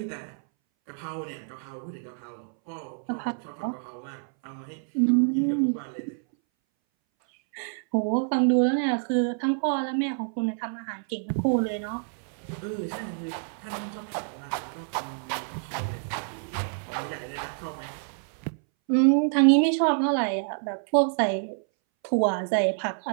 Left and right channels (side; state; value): left; silent; 60 dB below the other